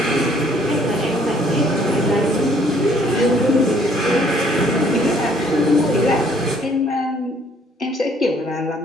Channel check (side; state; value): both; normal; correlation 0.62